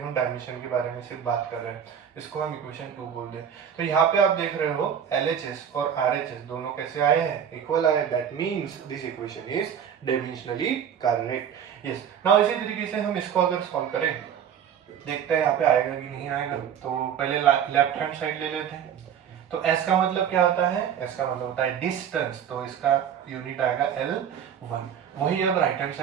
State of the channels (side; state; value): left; quieter; 8.5 dB